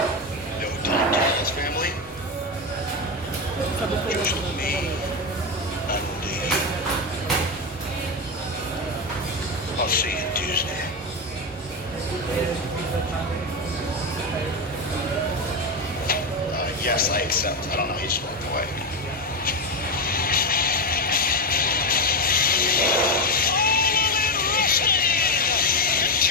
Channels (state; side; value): normal; both; correlation 0.11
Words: No Tom Callis family? Just me and you. I'll see you Tuesday. Yes, I accept. I don't know. He just walked away.